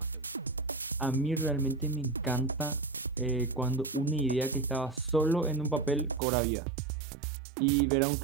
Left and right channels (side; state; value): left; drops out; at 6.2 s